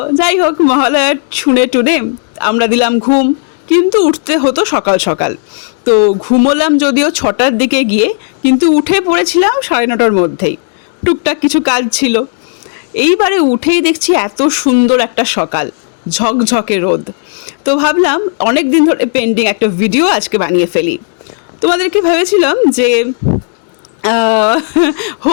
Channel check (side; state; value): right; silent; digital silence